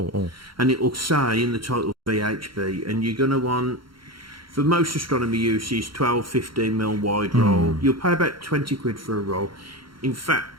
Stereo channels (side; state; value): left; late; 0.73 ms